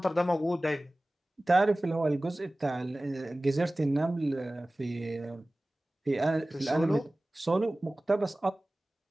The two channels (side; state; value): both; normal; correlation 0.98